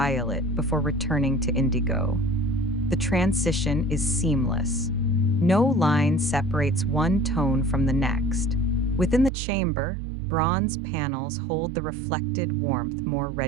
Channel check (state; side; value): drops out; left; at 9.3 s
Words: before returning to indigo. The transition is seamless. No line separates one tone from the next. Within the chamber, bronze panels hold the reflected warmth more